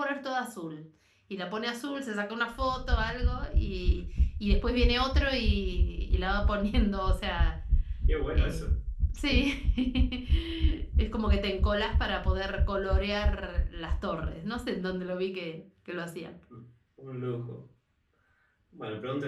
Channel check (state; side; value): identical; both; correlation 1.00